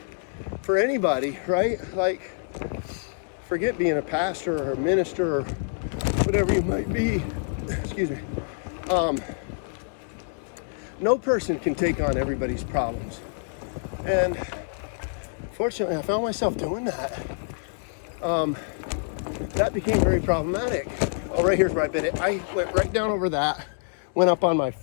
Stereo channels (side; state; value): right; silent; digital silence